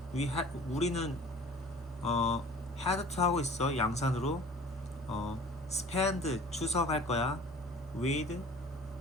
우리는 had to 하고 있어. 양산으로. spend 추석 할 거야. with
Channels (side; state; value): both; normal; correlation 0.46